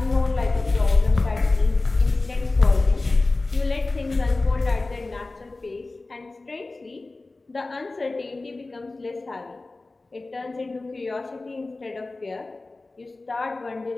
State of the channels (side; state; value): right; quieter; 3.3 dB